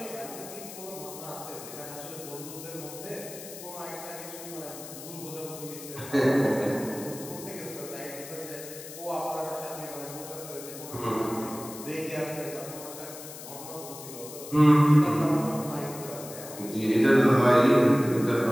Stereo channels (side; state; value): left; noise; hiss, 13 dB below the sound